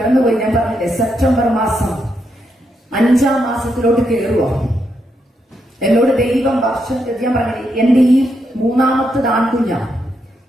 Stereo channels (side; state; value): both; normal; correlation 0.81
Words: ഞാൻ പറഞ്ഞില്ലേ, സെപ്റ്റംബർ മാസം 5-ാം മാസത്തിലോട്ട് കയറുക. എന്നോട് ദൈവം വർഷം ഞാൻ പറഞ്ഞില്ലേ, എന്റെ ഈ 3ാമത്തെ ആൺകുഞ്ഞ